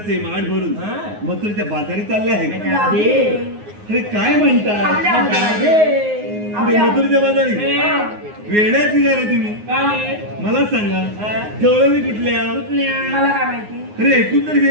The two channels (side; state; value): left; late; 9.6 ms